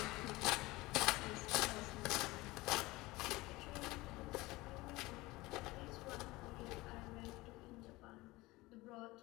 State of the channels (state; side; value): quieter; right; 20.7 dB